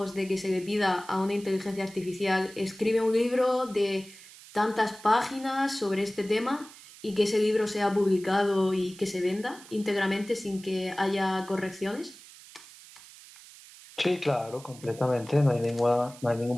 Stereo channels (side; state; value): right; noise; hiss, 20 dB below the sound